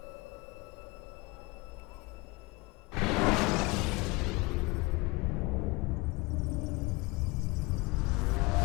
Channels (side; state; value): right; quieter; 24.9 dB